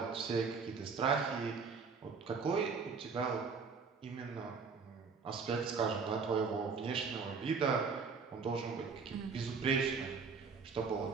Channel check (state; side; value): quieter; left; 5.2 dB